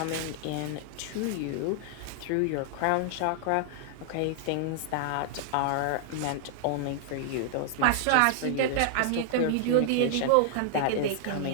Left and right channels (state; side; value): different; both; correlation -0.01